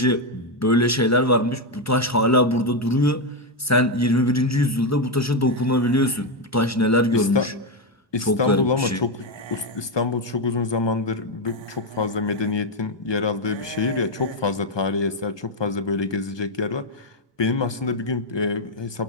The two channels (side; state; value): both; normal; correlation 0.05